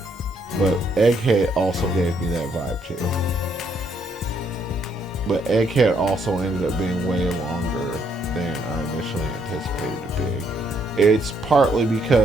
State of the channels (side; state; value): both; normal; correlation 0.71